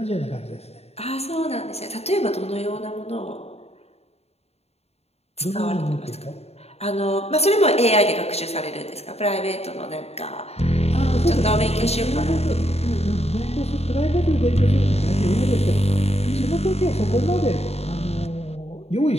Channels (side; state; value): right; late; 0.30 ms